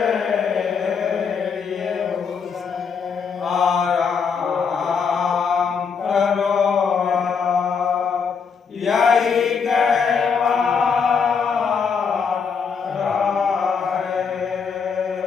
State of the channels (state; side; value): quieter; right; 6.0 dB